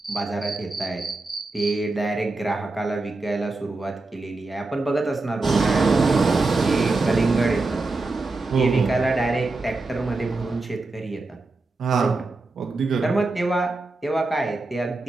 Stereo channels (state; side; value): quieter; left; 3.3 dB